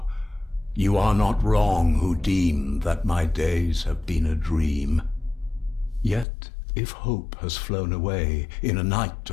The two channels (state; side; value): drops out; right; at 6.2 s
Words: You are not wrong who deem that my days have been a dream. Yet, if hope has flown away, in a night